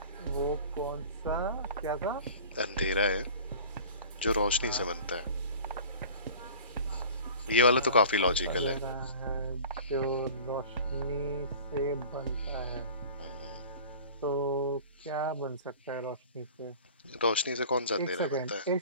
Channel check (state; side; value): inverted; both; correlation -0.42